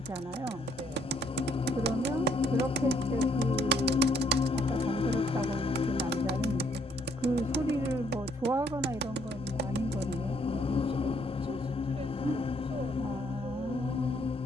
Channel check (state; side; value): normal; both; correlation 0.69